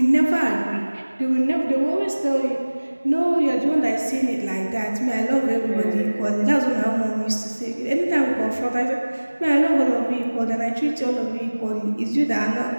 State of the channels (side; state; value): both; inverted; correlation -1.00